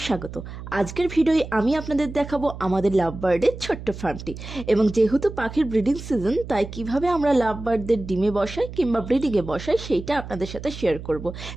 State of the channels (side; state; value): right; noise; hum, 11 dB below the sound